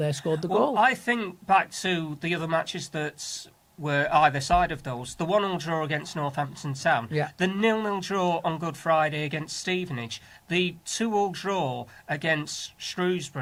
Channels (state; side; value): identical; both; correlation 1.00